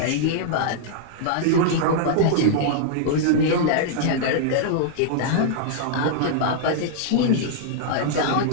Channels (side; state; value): both; different; correlation -0.01